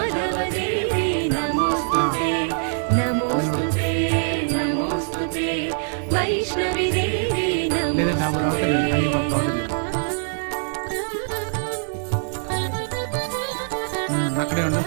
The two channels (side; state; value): left; silent; digital silence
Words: నమోస్తుతే నమోస్తుతే నమోస్తుతే వైష్ణవి దేవి నమోస్తుతే అక్కడే ఉండు.